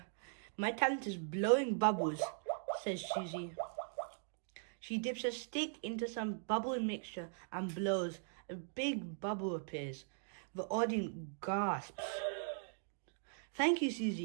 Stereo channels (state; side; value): silent; left; digital silence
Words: My talent is blowing bubbles, says Susie. She dips a stick into some bubble mixture and blows. A big bubble appears. The audience gasps. Thank you,